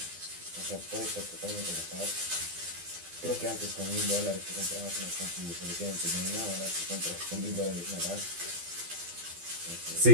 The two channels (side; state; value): left; late; 12 ms